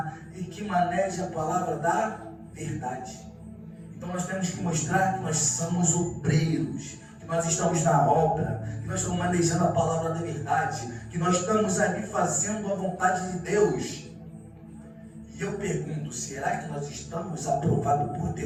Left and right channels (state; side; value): identical; both; correlation 1.00